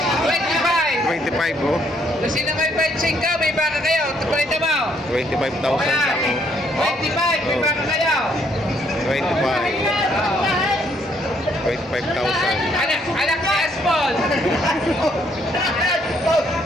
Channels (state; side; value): normal; both; correlation 0.69